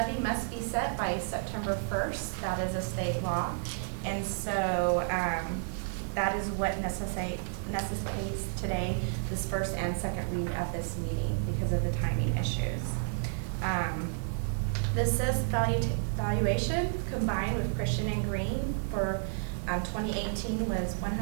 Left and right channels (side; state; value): left; silent; digital silence